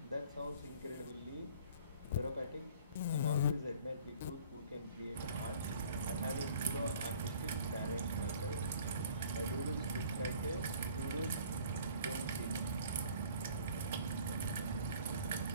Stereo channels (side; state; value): both; inverted; correlation -0.52